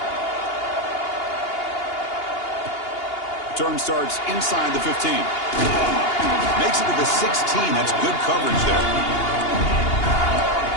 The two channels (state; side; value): late; right; 2.8 ms